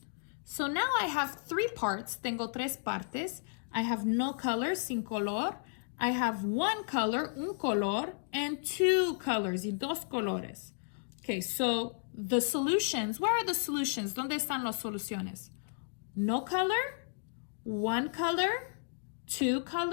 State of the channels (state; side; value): silent; right; digital silence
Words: So now I have 3 parts, tengo 3 partes. I have no color, sin color. I have 1 color, un color, and 2 colors, y 2 colores. Okay, so the solutions, where are the solutions? ¿Dónde están las soluciones? No color, 1 color, 2